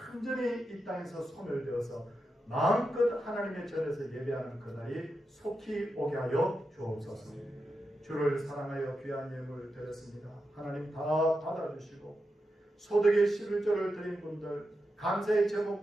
완전히 이 땅에서 소멸되어서 마음껏 하나님의 전에서 예배하는 그날이 속히 오게 하여 주옵소서. 주를 사랑하여 귀한 예물을 드렸습니다. 하나님 다 받아주시고 소득의 11조를 드린 분들, 감사의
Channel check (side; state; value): both; normal; correlation 0.88